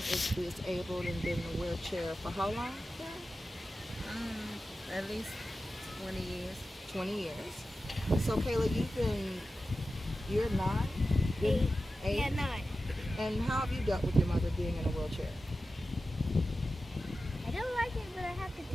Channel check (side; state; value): both; normal; correlation 0.93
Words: disabled and been in a wheelchair for how long, Karen? At least 20 years. 20 years. So Kayla, you're 9? Eight. 8? Yeah, 9. And how have you dealt with your mother being in a wheelchair? I don't like it, but I have to